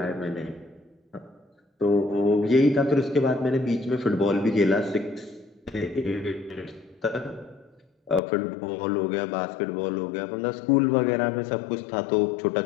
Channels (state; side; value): drops out; right; at 8.2 s